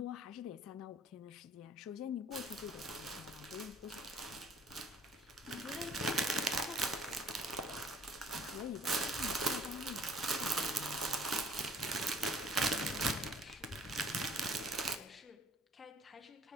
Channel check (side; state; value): both; normal; correlation 0.56